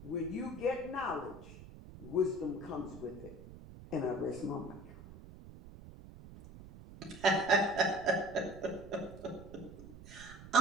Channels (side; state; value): right; noise; rumble, 16 dB below the sound